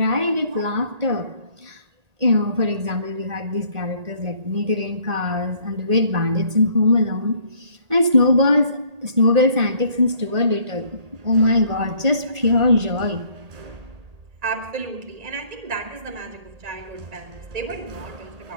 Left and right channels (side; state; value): left; late; 1.8 ms